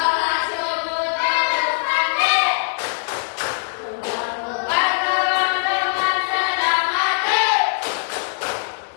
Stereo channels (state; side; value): silent; right; digital silence